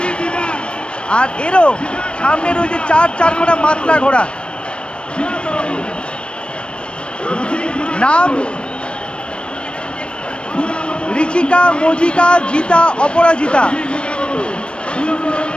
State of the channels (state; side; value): late; right; 0.057 ms